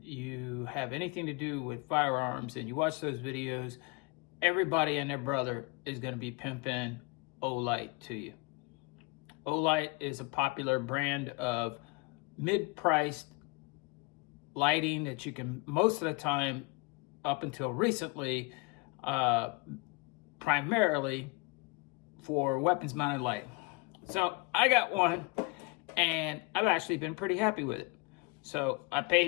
you have anything to do with firearms and you watch those videos, everybody and their brother is going to be pimping Olight to you. Olight is a popular brand of mid-priced lighting that you can, most of the time, up until recently, primarily for weapons mounted lighting. So I got one and I've actually been pretty happy with it. So I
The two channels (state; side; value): quieter; right; 28.1 dB